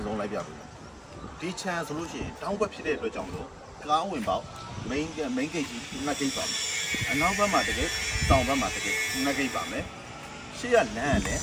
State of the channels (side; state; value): both; identical; correlation 1.00